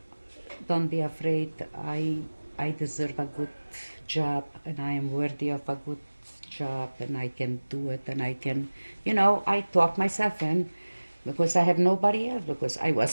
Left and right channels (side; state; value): both; inverted; correlation -1.00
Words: don't be afraid. I deserve a good job, and I am worthy of a good job, and I can do it, and I can, you know, I talk myself in because I have nobody else, because I was